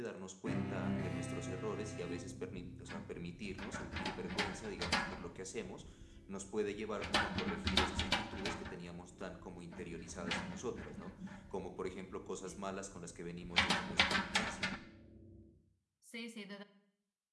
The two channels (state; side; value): identical; both; correlation 1.00